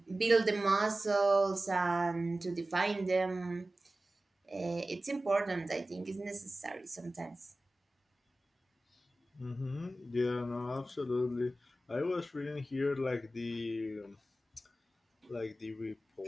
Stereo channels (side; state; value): both; normal; correlation 0.96